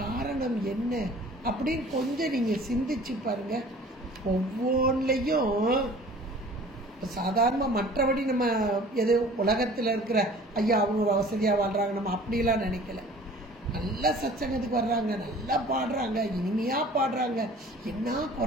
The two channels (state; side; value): normal; both; correlation 0.47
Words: என்ன அப்படின்னு கொஞ்சம் நீங்க சிந்திச்சு பாருங்க. ஒவ்வொன்றையும் சாதாரண மற்றபடி நம்ம எது உலகத்தில் இருக்கிற ஐயா அவங்க வசதியாக வாழ்றாங்க நம்ம அப்படிலாம் நினைக்கல. நல்லா சத்சங்கத்துக்கு வர்றாங்க, நல்லா பாடுறாங்க, இனிமையா பாடுறாங்க, என்ன